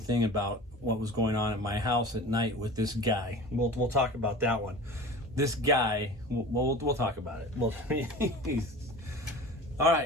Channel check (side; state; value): both; normal; correlation 0.37